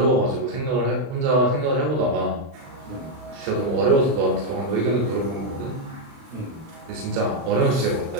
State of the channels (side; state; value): left; late; 36 ms